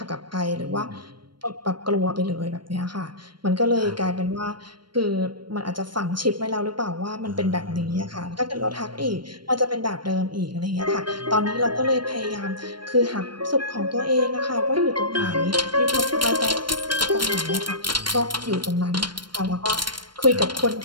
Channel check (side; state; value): left; late; 0.72 ms